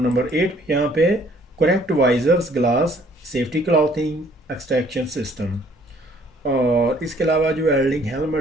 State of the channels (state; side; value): normal; both; correlation 0.60